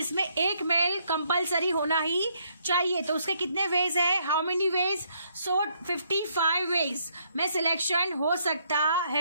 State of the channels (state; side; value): inverted; both; correlation -0.71